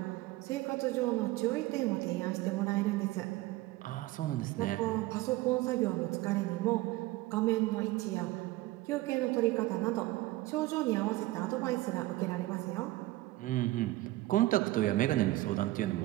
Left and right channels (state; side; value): quieter; left; 18.2 dB